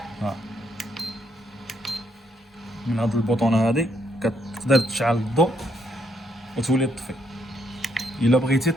ها، من هاد البوطونه هادي كتقدر تشعل الضوء وتولي تطفي. الا بغيتي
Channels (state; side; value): normal; both; correlation 0.73